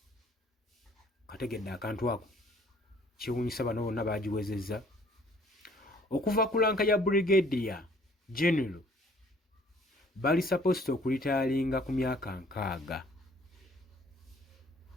Kategedde akantu ako kiwunyisa bano bonna bagiwezezza. Okuva ku lanka ya brigadier general bali supposed okulitayalinga ku myaka 60.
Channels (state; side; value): normal; both; correlation 0.57